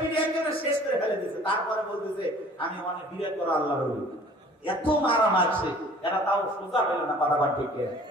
একজনে শেষ করে ফেলে দিয়েছে, তারপরে বলতেছে আমি অনেক বিরাট বড় আল্লাহর ওলি। এত মারা মারছে, এরা তাও সোজা হইল না, কথা বল ঠিক না?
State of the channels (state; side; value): normal; both; correlation 0.50